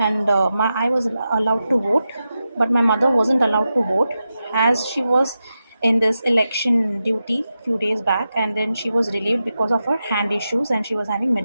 I was allowed to vote, but my mother wasn't allowed to vote as she was in this election duty few days back, and then she was relieved because of her hand issues and she was having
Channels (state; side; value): inverted; both; correlation -0.90